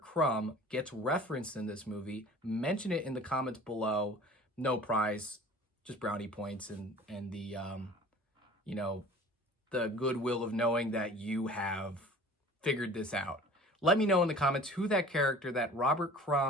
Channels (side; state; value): both; normal; correlation 0.45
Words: gets referenced in this movie. Mention it in the comments below. No prize, just brownie points and the the goodwill of knowing that you have figured this out. Let me know in the comments who that character, that Robert